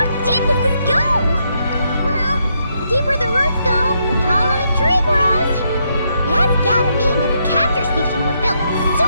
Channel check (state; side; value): inverted; both; correlation -0.77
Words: deep does this go? Well, the deeper the roots go, the taller the tree grows. That's gotta mean that the capture station was built